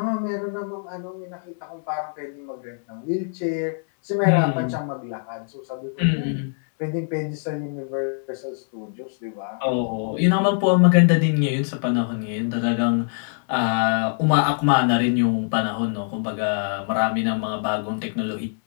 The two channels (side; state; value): right; silent; 63 dB below the other